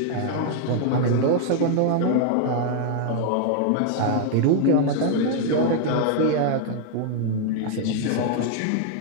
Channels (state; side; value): different; both; correlation 0.00